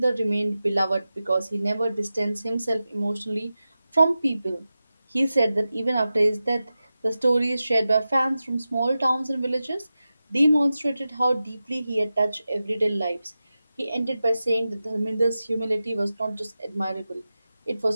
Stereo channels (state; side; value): inverted; both; correlation -0.93